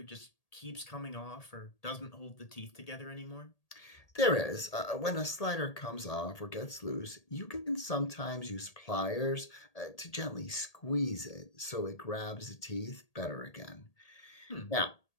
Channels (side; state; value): right; late; 1.8 ms